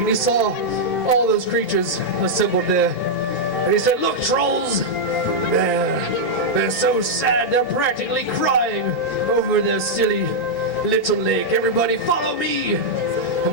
he saw all those creatures assembled there. And he said, "Look, trolls, they're so sad, they're practically crying over their silly little lake. Everybody follow me!"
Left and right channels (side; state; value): both; normal; correlation -0.04